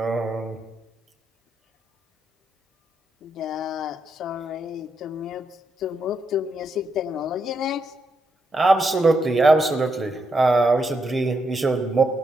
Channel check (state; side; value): normal; both; correlation 0.81